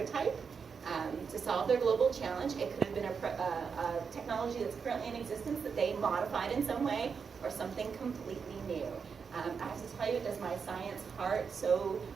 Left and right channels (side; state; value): left; quieter; 6.0 dB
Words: to solve their global challenge. It could have been a technology that's currently in existence that they modified in some way, or something completely new. I have to tell you, it does my science heart. So